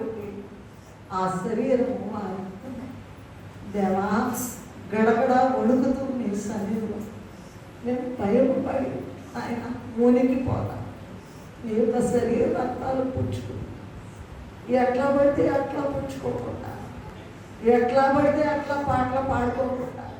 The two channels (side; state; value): both; identical; correlation 1.00